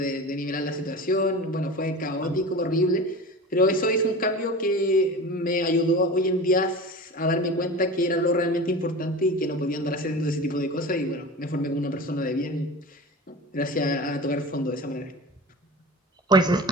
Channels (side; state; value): both; normal; correlation 0.32